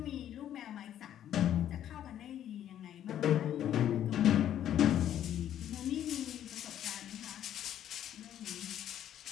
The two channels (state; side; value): quieter; right; 10.9 dB